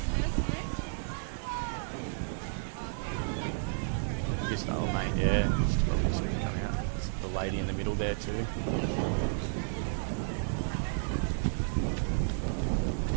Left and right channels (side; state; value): left; silent; digital silence